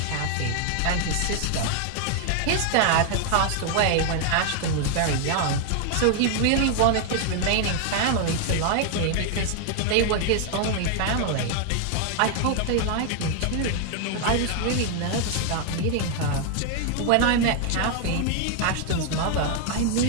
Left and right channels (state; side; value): different; both; correlation 0.00